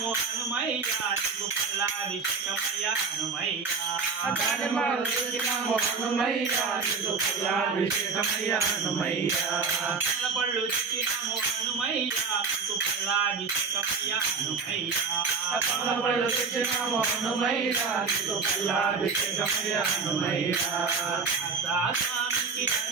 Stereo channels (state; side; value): quieter; left; 4.8 dB